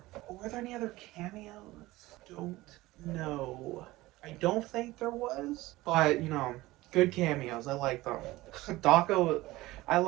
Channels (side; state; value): left; quieter; 18.7 dB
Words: Were there any other cameos? Don't know. I don't think there was, but you know, good cameos. I like them. Daco, I